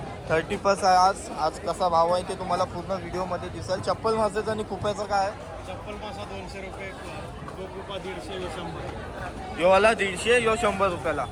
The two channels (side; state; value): both; identical; correlation 1.00